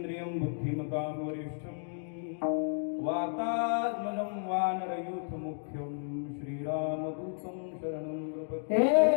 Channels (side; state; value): right; silent; digital silence